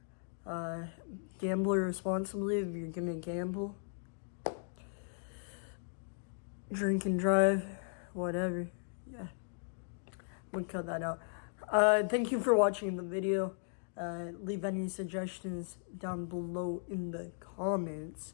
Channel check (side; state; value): right; silent; digital silence